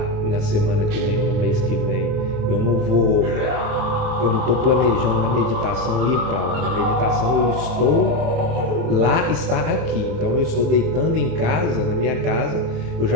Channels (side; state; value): left; late; 28 ms